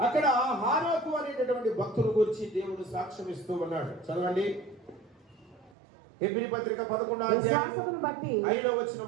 అక్కడ హానోకు అనేటటువంటి భక్తుల గురించి దేవుడు సాక్ష్యం ఇస్తూ ఉన్నాడు. చదవండి. హెబ్రీ పత్రిక 11వ అధ్యాయం 5వ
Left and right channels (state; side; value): drops out; left; at 5.8 s